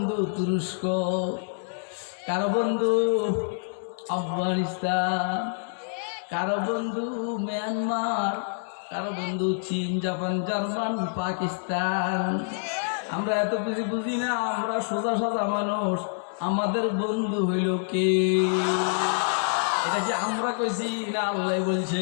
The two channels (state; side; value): silent; right; 60 dB below the other